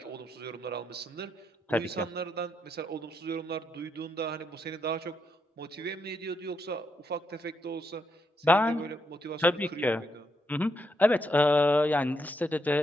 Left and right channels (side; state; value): both; normal; correlation 0.79